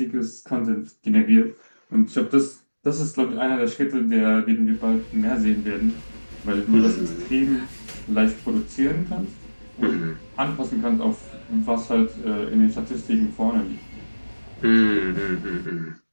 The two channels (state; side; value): inverted; both; correlation -1.00